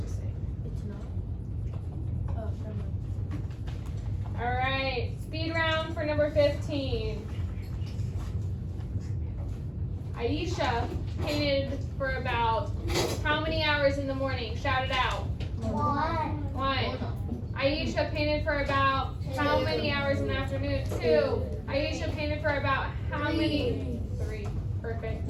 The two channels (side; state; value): both; identical; correlation 1.00